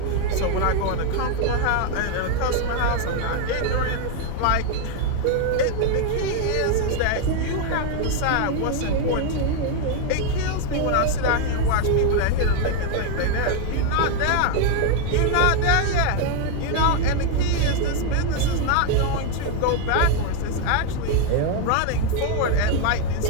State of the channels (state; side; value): different; both; correlation 0.01